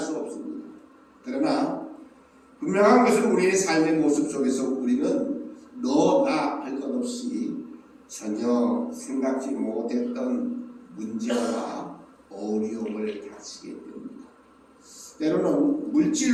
없습니다. 그러나 분명한 것은 우리의 삶의 모습 속에서 우리는 너나 할 것 없이 전혀 생각지 못했던 문제와 어려움을 닥치게 됩니다. 때로는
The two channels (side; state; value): both; identical; correlation 1.00